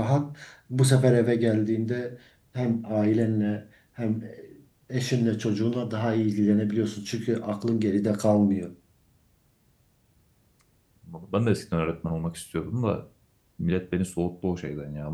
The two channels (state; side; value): identical; both; correlation 1.00